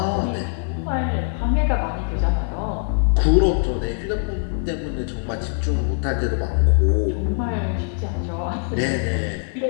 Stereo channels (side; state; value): right; silent; 56 dB below the other